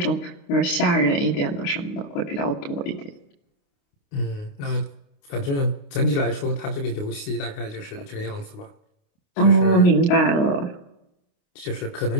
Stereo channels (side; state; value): right; late; 29 ms